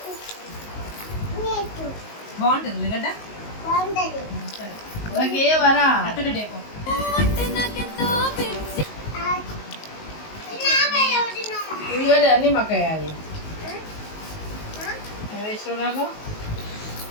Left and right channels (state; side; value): late; right; 19 ms